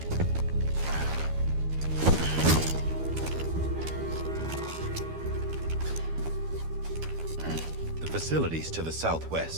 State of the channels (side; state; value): left; late; 12 ms